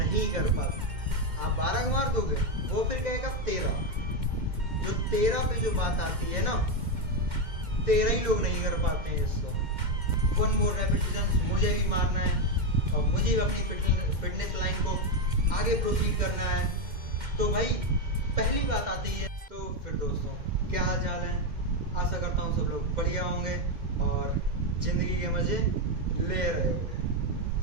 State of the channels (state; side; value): late; left; 2.1 ms